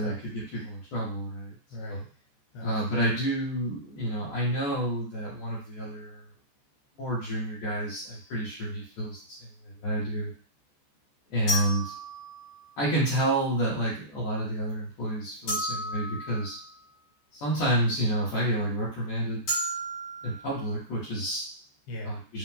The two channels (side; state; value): right; late; 14 ms